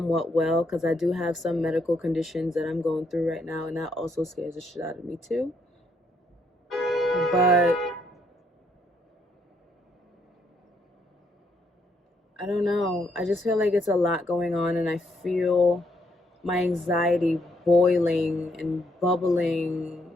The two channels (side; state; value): both; normal; correlation 0.73